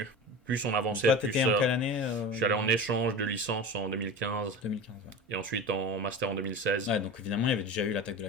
Plus on avançait, toi, t'étais en quelle année Je suis allé en échange de licence en 2015. 2015, Et ensuite en master en 2016. Ouais, donc évidemment, il y avait déjà eu l'attaque de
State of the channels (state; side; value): normal; both; correlation 0.32